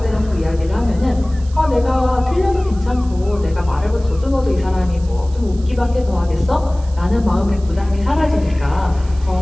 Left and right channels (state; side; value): noise; right; hiss, 24 dB below the sound